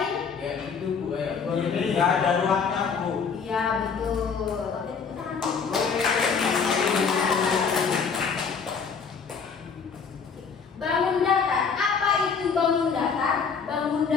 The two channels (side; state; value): right; quieter; 5.8 dB